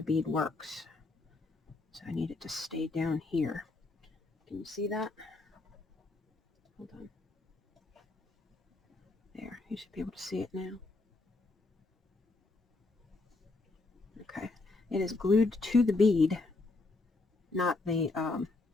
bead works. So I need it to stay down here. Can you see that? Hold on. There, you should be able to see it now. Okay, it is glued to the bead, not the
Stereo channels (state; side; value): quieter; right; 3.4 dB